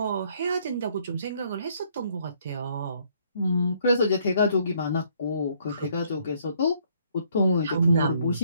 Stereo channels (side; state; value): both; inverted; correlation -0.66